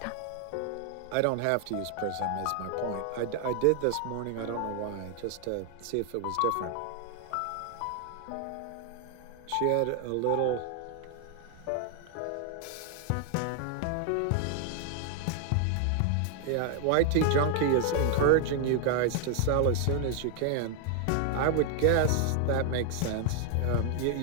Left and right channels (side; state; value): both; different; correlation 0.00